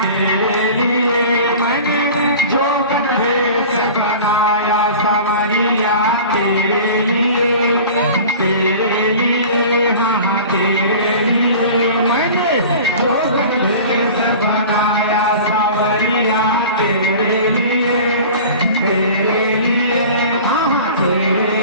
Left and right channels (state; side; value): inverted; both; correlation -0.40